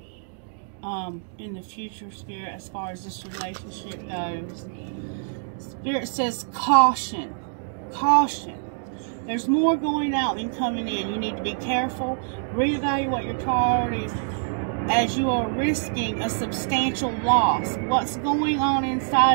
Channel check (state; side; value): silent; left; digital silence